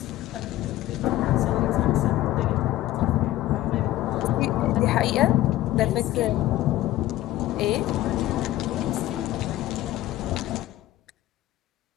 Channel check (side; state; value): right; quieter; 15.4 dB